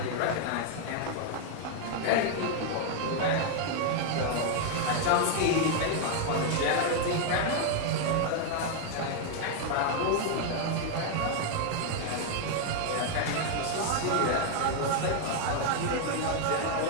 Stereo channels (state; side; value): different; both; correlation 0.00